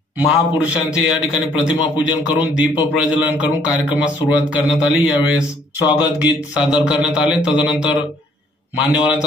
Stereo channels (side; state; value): both; normal; correlation 0.63